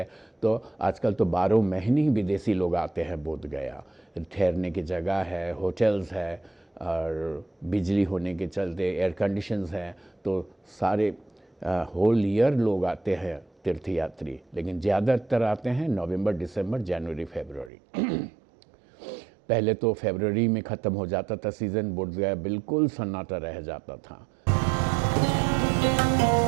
तो आजकल तो 12 महीने ही विदेशी लोग आते हैं बोधगया। ठहरने की जगह है, होटल्स है, और बिजली होने के चलते एयर कंडीशंस हैं, तो सारे होल ईयर लोग आते हैं तीर्थयात्री। लेकिन ज़्यादातर आते हैं नवंबर, दिसंबर, जनवरी, फरवरी। पहले तो फरवरी में ख़त्म हो जाता था सीज़न, बोधगया बिल्कुल सन्नाटा रह जाता था।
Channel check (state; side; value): drops out; left; at 17.7 s